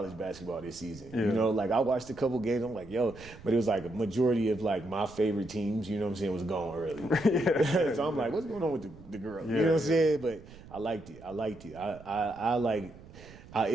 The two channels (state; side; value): noise; right; rumble, 19 dB below the sound